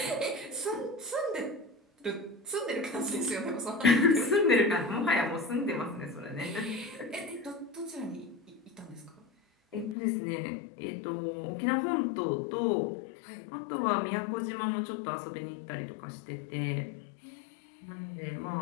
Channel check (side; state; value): right; drops out; at 10.0 s